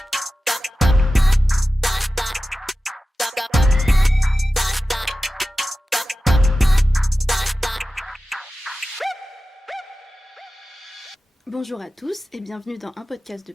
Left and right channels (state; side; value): normal; both; correlation 0.94